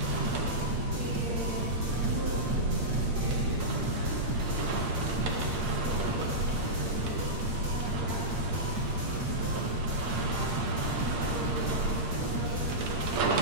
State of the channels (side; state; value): left; late; 8.6 ms